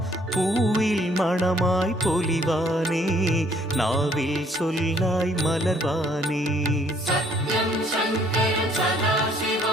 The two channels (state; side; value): normal; both; correlation 0.63